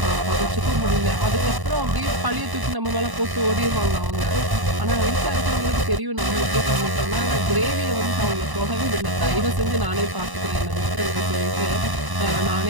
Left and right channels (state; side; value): late; left; 1.0 ms